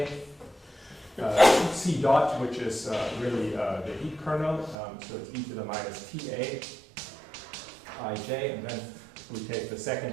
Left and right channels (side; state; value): left; drops out; at 4.8 s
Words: C dot, which is really the heat kernel, so it's e to the minus TA ij, and then we take the